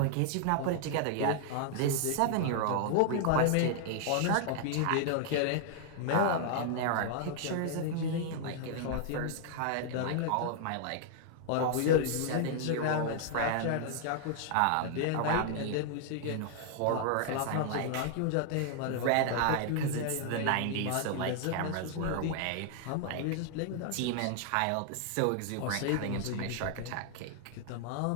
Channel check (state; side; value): different; both; correlation 0.00